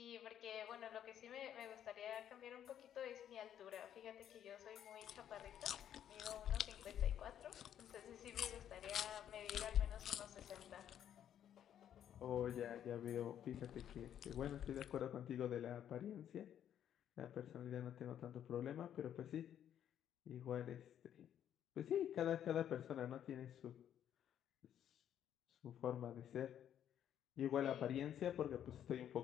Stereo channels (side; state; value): right; quieter; 10.1 dB